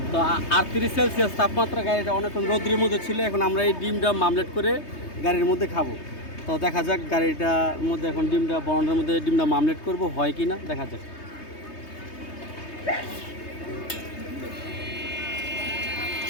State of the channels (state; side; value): late; right; 3.2 ms